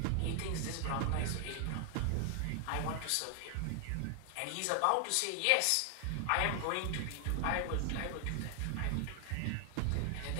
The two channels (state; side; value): different; both; correlation 0.00